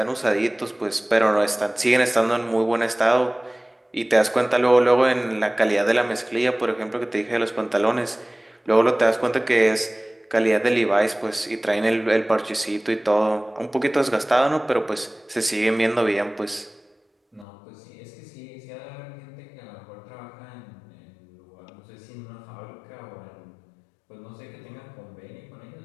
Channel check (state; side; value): drops out; right; at 17.4 s